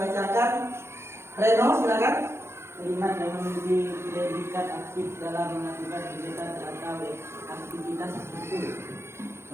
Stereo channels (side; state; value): left; late; 0.12 ms